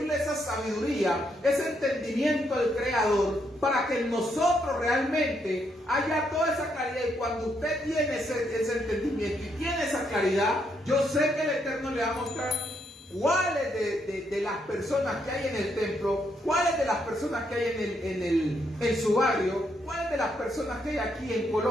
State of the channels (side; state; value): both; normal; correlation 0.76